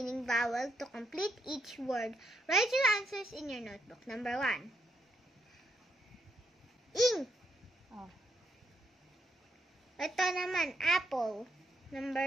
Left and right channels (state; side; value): normal; both; correlation 0.78